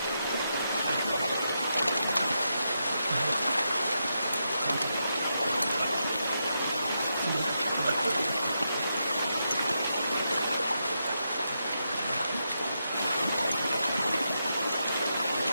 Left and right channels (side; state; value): both; inverted; correlation -0.84